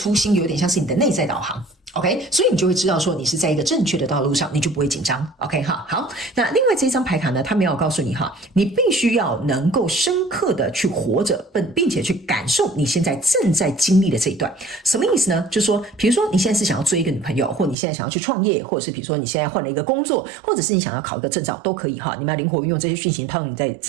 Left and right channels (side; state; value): left; drops out; at 17.8 s